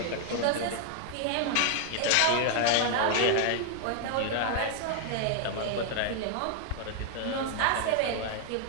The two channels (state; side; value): different; both; correlation 0.00